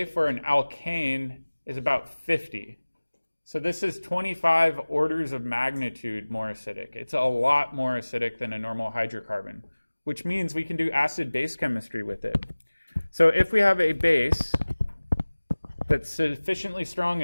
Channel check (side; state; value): both; inverted; correlation -1.00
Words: for an alkane is about 50. So this is 25 orders of magnitude more acidic. It's a lot more acidic than a normal hydrocarbon, which means we can do acid-base chemistry with it. So if we have a base that's sufficiently strong